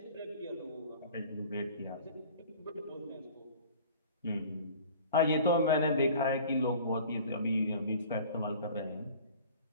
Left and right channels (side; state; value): both; inverted; correlation -0.45